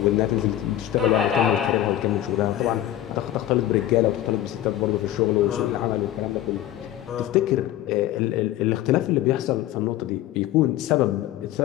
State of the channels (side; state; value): right; quieter; 13.2 dB